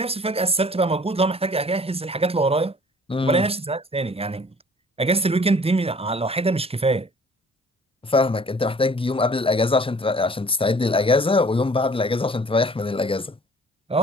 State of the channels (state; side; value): normal; both; correlation 0.52